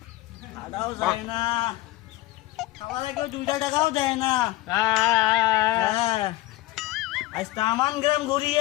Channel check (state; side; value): quieter; right; 17.8 dB